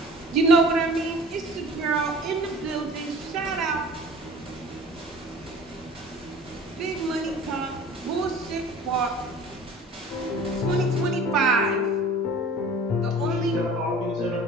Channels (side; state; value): both; normal; correlation 0.44